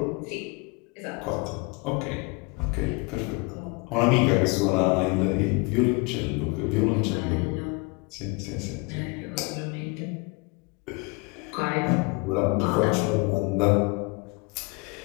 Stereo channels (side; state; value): right; quieter; 29.4 dB